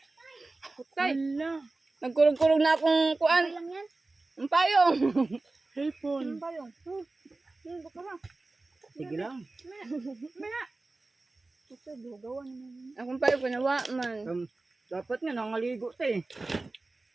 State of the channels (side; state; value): left; quieter; 3.2 dB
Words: Putay. Nagkulog-kulog na akong kuan. Lang yan. Ang payong. Cellphone. Ang payong. Bakara. Sige lang. Maya. Ito bugawan mo. Akong payong panawa man. Dapat nga nangaligo ta eh.